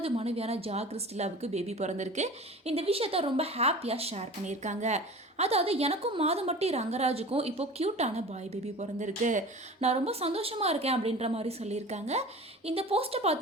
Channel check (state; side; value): normal; both; correlation 0.38